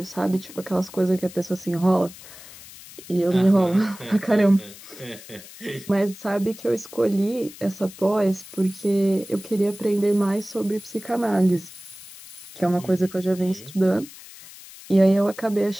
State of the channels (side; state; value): left; noise; hiss, 18 dB below the sound